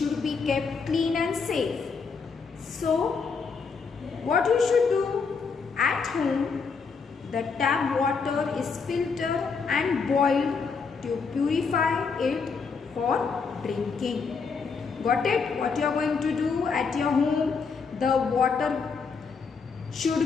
be kept clean and safe? So, what you should do? At home, the tap water is filtered and boiled to purify it for drinking. Got it? What you are going to do at your home? The water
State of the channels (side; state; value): right; quieter; 5.2 dB